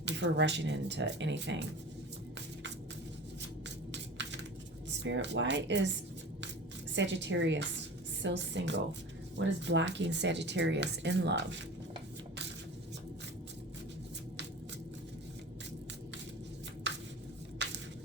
before rushing into anything. Spirit, why is Sagittarius still single? What is blocking Sagittarius in love?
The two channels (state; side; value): normal; both; correlation 0.36